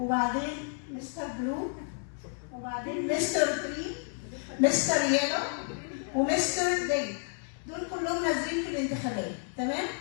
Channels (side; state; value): right; silent; 56 dB below the other